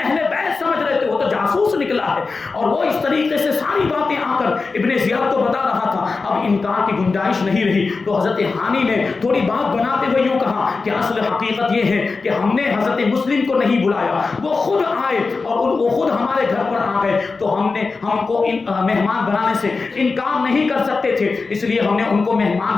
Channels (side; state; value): right; quieter; 4.2 dB